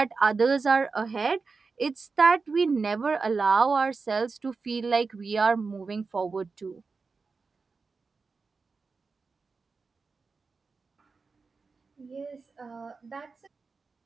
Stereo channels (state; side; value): quieter; left; 4.5 dB